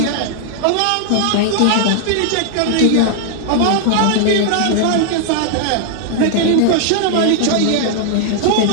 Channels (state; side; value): different; both; correlation -0.01